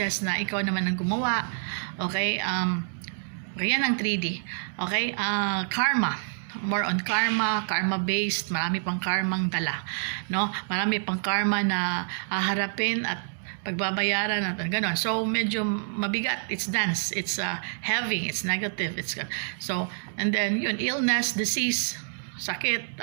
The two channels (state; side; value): silent; left; digital silence